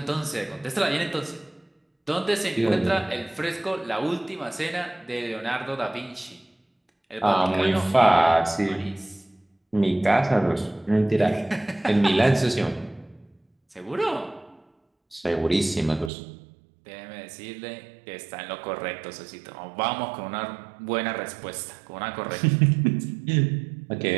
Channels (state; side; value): drops out; left; at 16.1 s